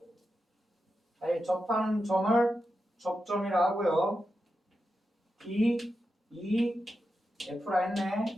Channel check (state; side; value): normal; both; correlation 0.89